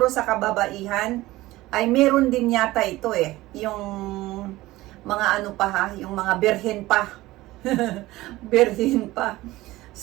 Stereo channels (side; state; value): left; quieter; 18.0 dB